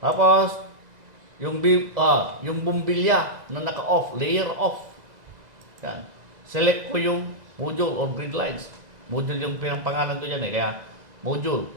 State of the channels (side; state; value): left; late; 2.0 ms